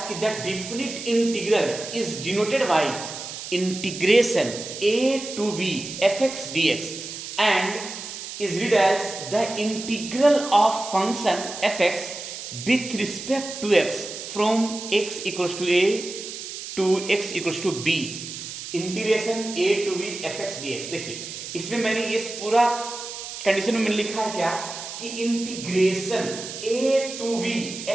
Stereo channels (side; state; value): right; noise; hiss, 9 dB below the sound